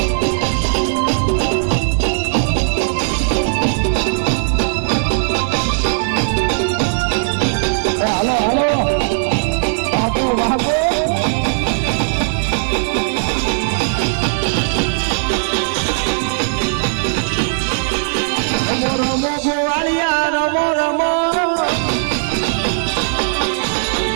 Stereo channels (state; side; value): silent; left; digital silence